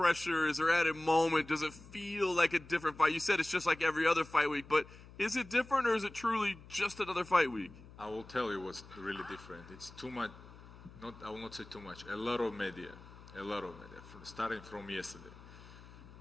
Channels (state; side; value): noise; left; hum, 19 dB below the sound